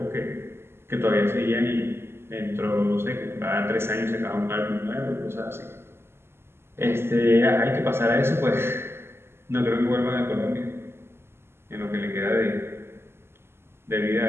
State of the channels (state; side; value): late; left; 0.12 ms